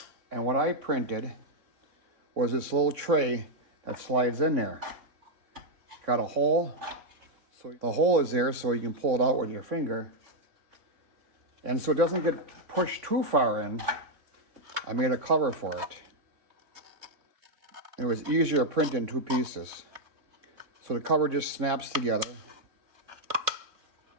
And what I printed was this little tray that slides in there. Got a hole. So the hole is there so you can pull it out with your finger. And so it doesn't get pushed too far in, I made a cover for it. It was easier to print in two pieces. So the cover just snaps together.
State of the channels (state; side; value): late; left; 3.6 ms